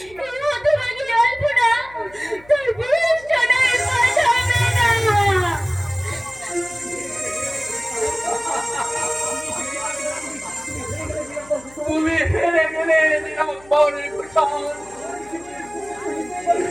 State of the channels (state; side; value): noise; left; hum, 25 dB below the sound